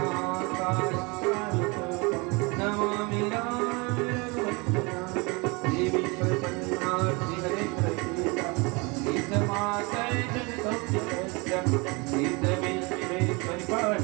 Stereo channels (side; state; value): left; quieter; 27.9 dB